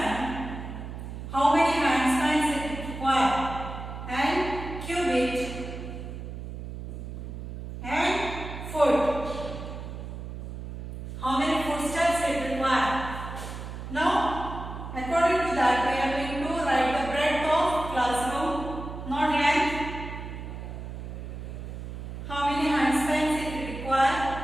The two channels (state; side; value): noise; right; hum, 9 dB below the sound